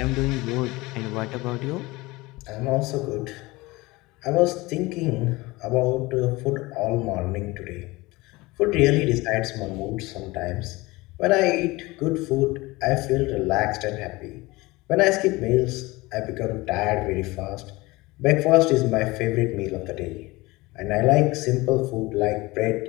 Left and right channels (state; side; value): quieter; right; 21.7 dB